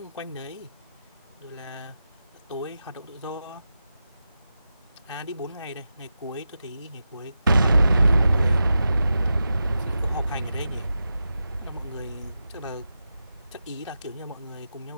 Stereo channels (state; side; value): inverted; both; correlation -0.90